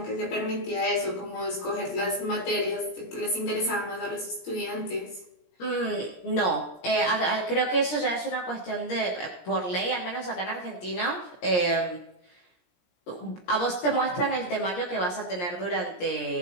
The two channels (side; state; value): right; late; 17 ms